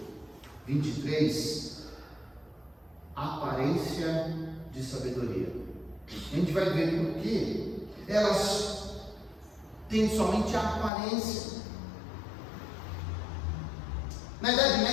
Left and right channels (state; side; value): drops out; right; at 10.9 s